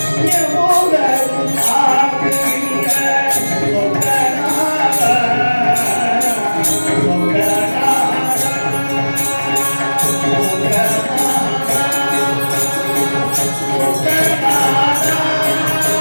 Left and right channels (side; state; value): both; inverted; correlation -1.00